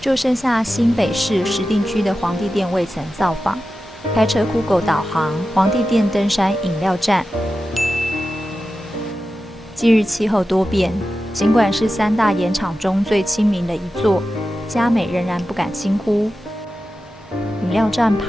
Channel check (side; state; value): both; normal; correlation 0.92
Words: 剩下新北市石碇区的皇帝殿未曾造访。开车酷狗导航，皇帝殿登山饮料站。近日气候多变，尽管是3大盐场中最亲民的一座，嘉美仍然不敢轻忽。饮料站